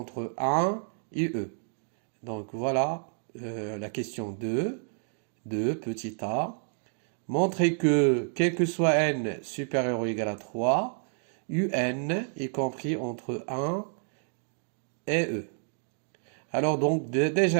1 et e. Donc voilà la question 2, petit a, montrer que quel que soit n supérieur ou égal à 3, un est compris entre 1 et e. Alors donc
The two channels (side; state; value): left; silent; 58 dB below the other